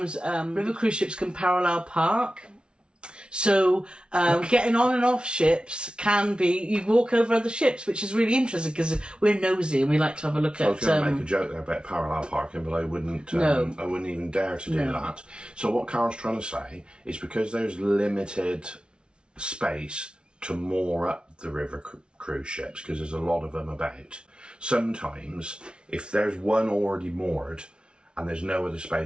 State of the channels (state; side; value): late; left; 0.056 ms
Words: river cruise ships can parallel park. So getting on and off ships can be, you walk over other ships, which is really interesting because we're nosy and we like to have a look at... I was going to make a joke there about parallel parking, but I wouldn't even dare to do that. So what Carole's trying to say is because there's limited space to moor up the river cruise ships, because there's a lot of them about, sometimes if there's one already moored and there's no other